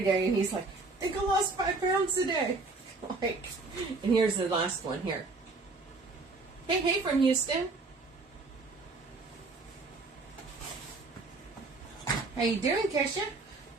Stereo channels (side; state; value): left; quieter; 3.7 dB